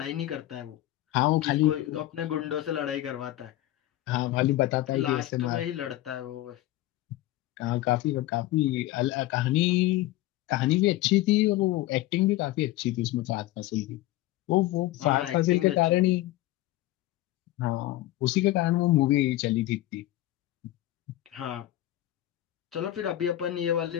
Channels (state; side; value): quieter; right; 15.7 dB